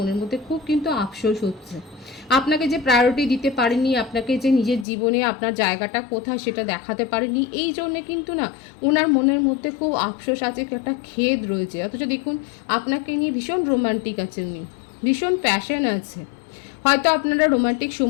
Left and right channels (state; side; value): drops out; right; at 4.9 s